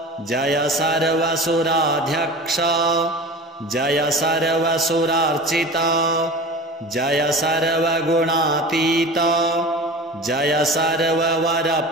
जय सर्वसुराध्यक्ष जय सर्वसुरार्चित जय सर्वगुणातीत जय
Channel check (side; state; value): both; normal; correlation 0.35